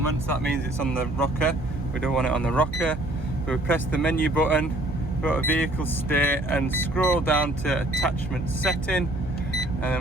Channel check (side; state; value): right; noise; hum, 10 dB below the sound